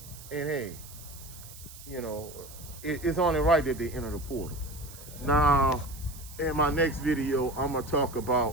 And hey, it's only right that they enter the portal. Now, in my next video, I'm going to talk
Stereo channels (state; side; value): noise; right; hiss, 17 dB below the sound